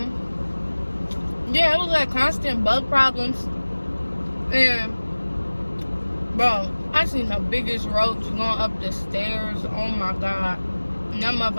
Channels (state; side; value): inverted; both; correlation -1.00